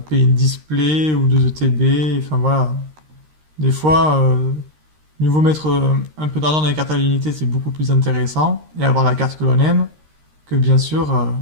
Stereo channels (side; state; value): left; late; 13 ms